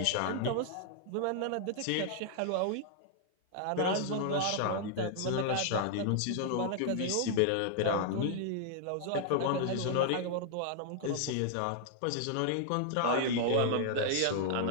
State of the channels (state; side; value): different; both; correlation -0.01